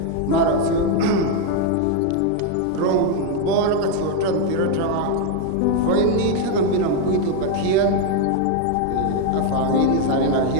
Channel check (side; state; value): both; different; correlation 0.01